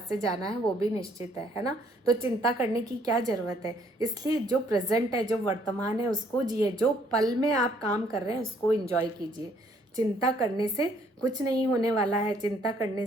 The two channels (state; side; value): normal; both; correlation 0.65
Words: से जाना है वो भी निश्चित है ना? तो चिंता करने की क्या ज़रूरत है? इसलिए जो प्रेजेंट है, जो वर्तमान है, उसको जिए। जो पल में आप काम कर रहे हैं उसको एंजॉय कीजिए। चिंता करने से कुछ नहीं होने वाला है। चिंता करने